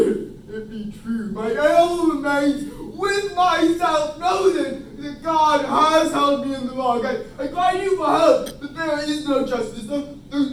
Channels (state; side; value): identical; both; correlation 1.00